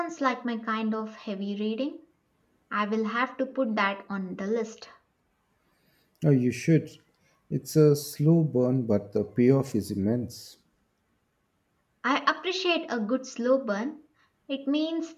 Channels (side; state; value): both; identical; correlation 1.00